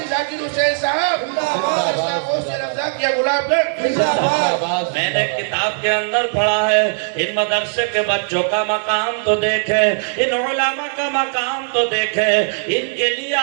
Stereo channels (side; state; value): left; silent; digital silence